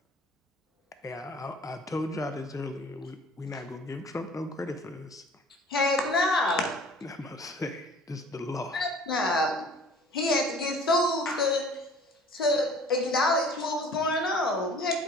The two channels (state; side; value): normal; both; correlation 0.49